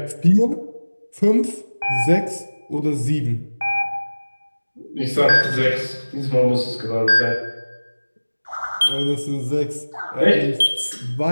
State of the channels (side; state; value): both; inverted; correlation -1.00